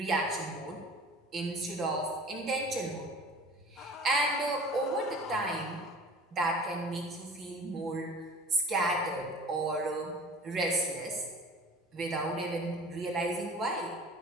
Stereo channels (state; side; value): normal; both; correlation 0.43